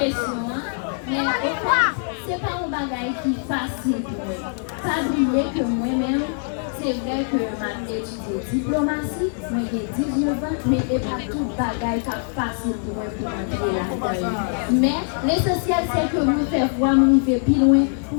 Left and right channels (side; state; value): right; silent; 59 dB below the other